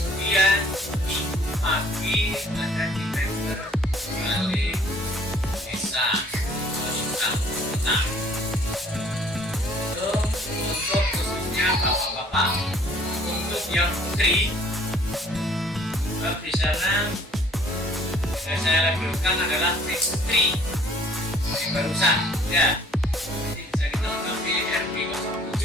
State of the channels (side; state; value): both; normal; correlation 0.57